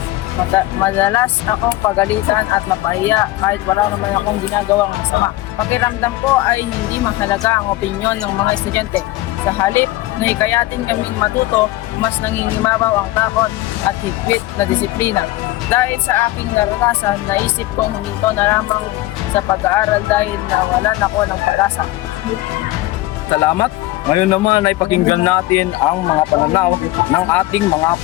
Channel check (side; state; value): right; quieter; 17.6 dB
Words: Madalas akong pagalitan at mapahiya kahit wala naman akong ginagawang masama. Pakiramdam ko ay hindi mahalaga ang opinyon ng mga estudyante. Sa halip na hikayatin kaming matuto, mas nangingimabaw ang takot at higpit na disiplina. Dahil sa aking naranasan, naisip kong huminto na lamang sa pag-aaral dahil nawalan ako ng pag-asa. Salamat. Ngayon naman ay pakinggan natin ang mga pananaw ng ating mga